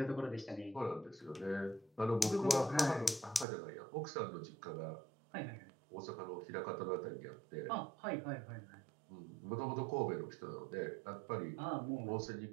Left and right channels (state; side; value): drops out; left; at 3.5 s